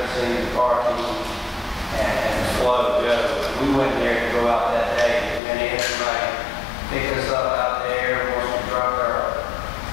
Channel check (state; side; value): drops out; right; at 5.4 s